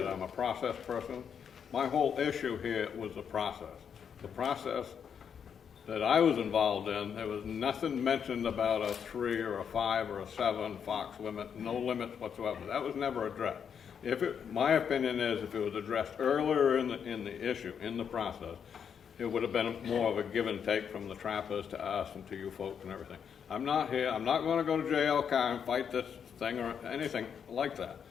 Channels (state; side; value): quieter; right; 7.5 dB